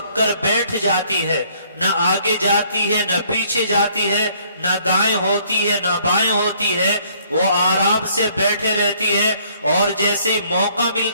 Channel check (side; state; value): both; inverted; correlation -0.62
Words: کر بیٹھ جاتی ہے، نہ آگے جاتی ہے نہ پیچھے جاتی ہے، نہ دائیں ہوتی ہے نہ بائیں ہوتی ہے، وہ آرام سے بیٹھے رہتی ہے، اور جیسے موقع